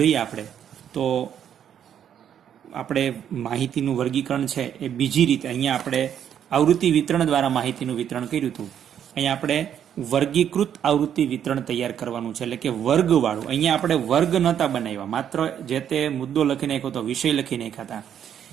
આપણે તો આપણે માહિતીનું વર્ગીકરણ છે એ બીજી રીતે અહીંયા આપણે આવૃત્તિ વિતરણ દ્વારા માહિતીનું વિતરણ કર્યું હતું. અહીંયા આપણે વર્ગીકૃત આવૃત્તિ વિતરણ તૈયાર કરવાનું છે, એટલે કે વર્ગવાળું. અહીંયા આપણે વર્ગ નહોતા બનાવ્યા, માત્ર જે તે મુદ્દો લખી નાખ્યો તો વિષય લખી નાખ્યા હતા.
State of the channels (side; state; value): left; quieter; 9.3 dB